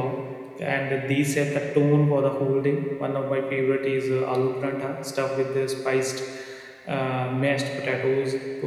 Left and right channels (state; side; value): identical; both; correlation 1.00